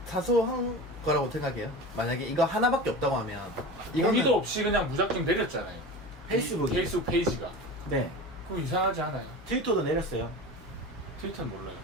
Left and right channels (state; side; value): normal; both; correlation 0.32